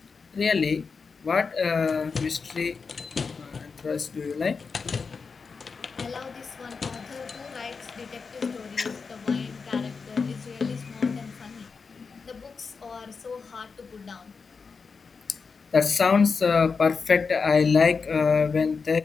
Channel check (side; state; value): right; quieter; 5.0 dB